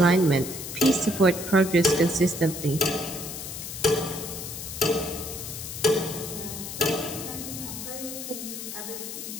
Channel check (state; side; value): noise; left; hiss, 8 dB below the sound